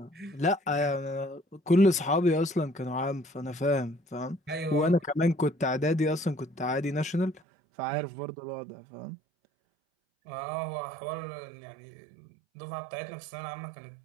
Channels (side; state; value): left; drops out; at 7.4 s